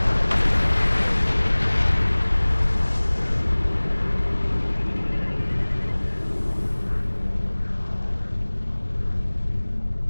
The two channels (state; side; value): inverted; both; correlation -1.00